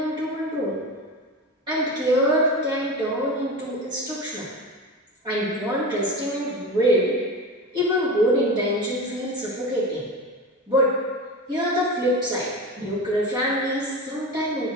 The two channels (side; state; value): both; normal; correlation 0.27